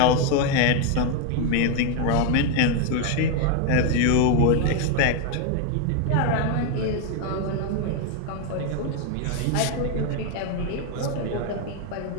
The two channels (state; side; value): different; both; correlation 0.01